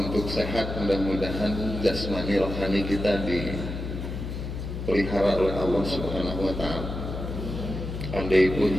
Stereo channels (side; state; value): left; noise; hum, 6 dB below the sound